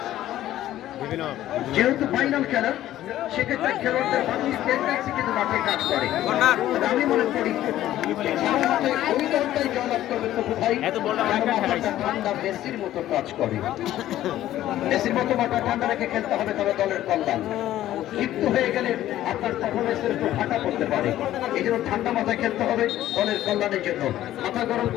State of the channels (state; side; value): quieter; right; 13.4 dB